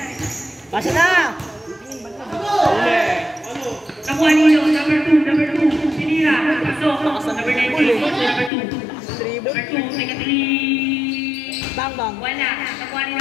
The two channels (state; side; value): drops out; right; at 8.5 s